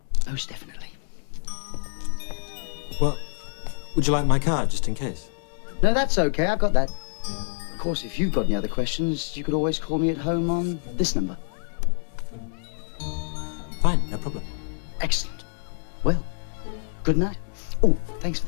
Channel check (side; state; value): right; silent; digital silence